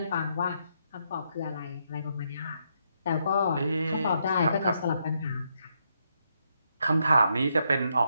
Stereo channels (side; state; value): both; inverted; correlation -0.77